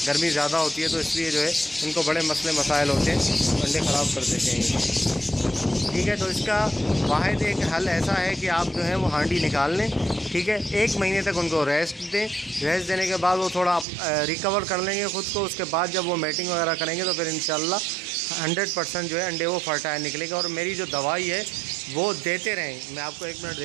गर्मी ज़्यादा होती है, तो इसलिए जो है इनको बड़े मसले मसाइल होते हैं, अंडे ख़राब कर देते हैं। ठीक है, तो इसका वाहिद एक हल ऐसा है कि आप जो है वो हांडी निकाल लें, ठीक है, 1 महीने तक उनको रेस्ट दें। रेस्ट देने के बाद वो थोड़ा रिकवर कर लेंगे ख़ुद को, उसके बाद जब वो मैटिंग वगैरह करेंगे तो फिर इंशाल्लाह 100% जो है अंडे वो फर्टाइल निकलेगा। और मेरी जो दवाई है वो देते रहें। मैं आपको 1 मिनट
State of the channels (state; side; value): drops out; left; at 13.9 s